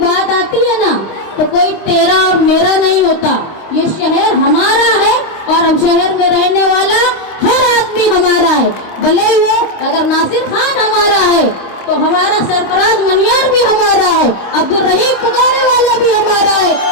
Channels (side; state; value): right; late; 25 ms